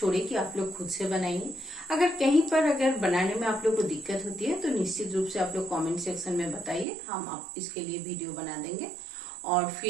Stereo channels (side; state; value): left; drops out; at 6.9 s